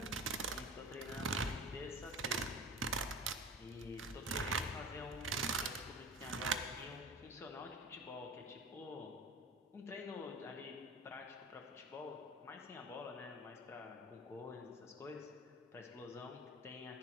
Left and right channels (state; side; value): normal; both; correlation 0.35